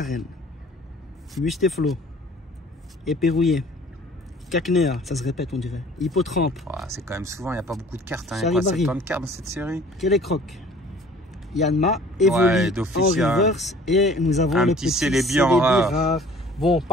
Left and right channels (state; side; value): normal; both; correlation 0.51